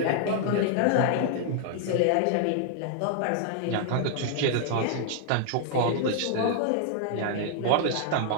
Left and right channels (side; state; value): both; different; correlation -0.01